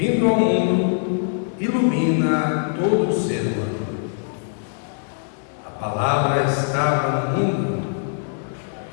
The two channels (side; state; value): right; silent; digital silence